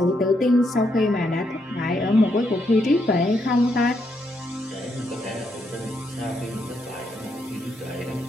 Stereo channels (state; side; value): normal; both; correlation 0.78